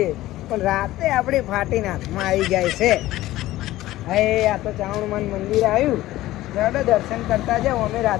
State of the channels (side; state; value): right; quieter; 16.1 dB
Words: પણ રાતે આપણી ફાટીને હાથમાં આવી જાય છે. હવે આ તો ચાવણમાન મંદિર આવ્યું, ચાલો દર્શન કરતા જાઓ. અમે